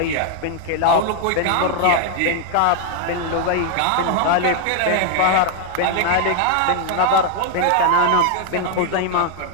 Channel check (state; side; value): different; both; correlation 0.00